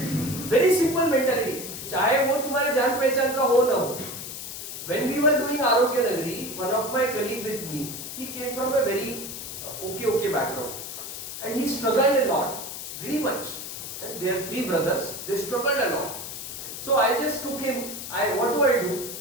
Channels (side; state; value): left; noise; hiss, 8 dB below the sound